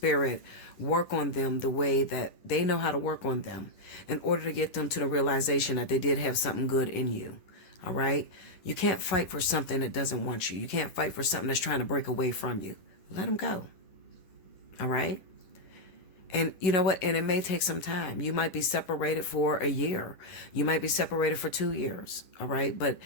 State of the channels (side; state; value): right; late; 10 ms